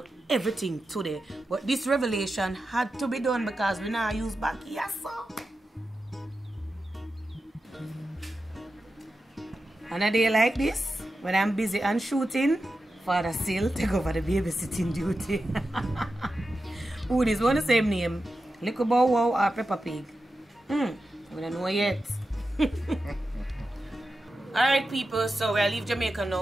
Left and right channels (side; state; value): both; normal; correlation 0.91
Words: everything today. But this revelation had to be done because we now use back here, so. On a day like this, when I'm busy and shooting, Father still take over the babysitting duty. Who is one the same name? Little Bow Wow or Peppa Pig? We don't know yet. Alright, people, so we'll leave Jamaica